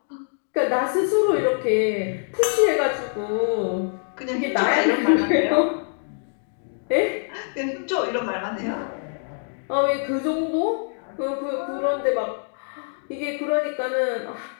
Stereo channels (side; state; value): right; silent; digital silence